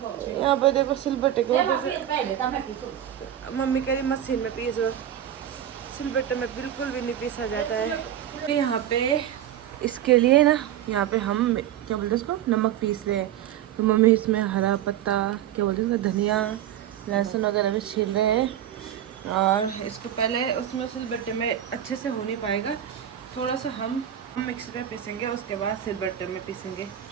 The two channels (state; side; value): quieter; left; 10.9 dB